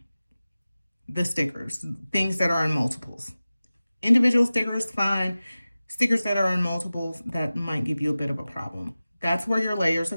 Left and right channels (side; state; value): both; inverted; correlation -0.96